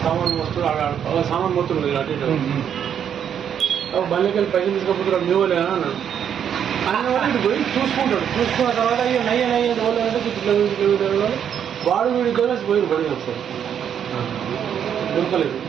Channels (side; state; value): left; quieter; 8.7 dB